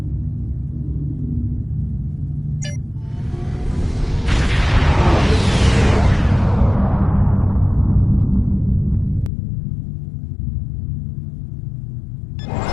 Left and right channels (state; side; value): drops out; right; at 9.3 s